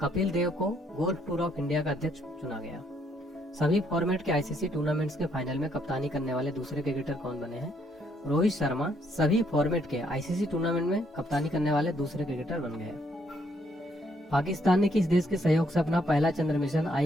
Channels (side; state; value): both; normal; correlation 0.71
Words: कपिल देव को गोल्फ टूर ऑफ इंडिया का अध्यक्ष चुना गया। सभी फॉर्मेट के आईसीसी टूर्नामेंट्स के फाइनल में कप्तानी करने वाले दूसरे क्रिकेटर कौन बने हैं? रोहित शर्मा सभी फॉर्मेट के आईसीसी टूर्नामेंट में कप्तानी करने वाले दूसरे क्रिकेटर बन गए। पाकिस्तान ने किस देश के सहयोग से अपना पहला चंद्र मिशन